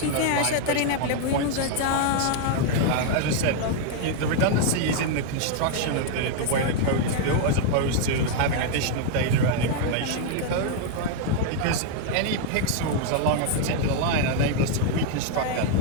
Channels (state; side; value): different; both; correlation 0.00